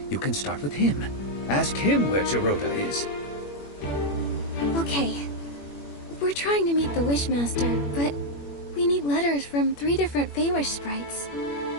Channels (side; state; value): right; late; 21 ms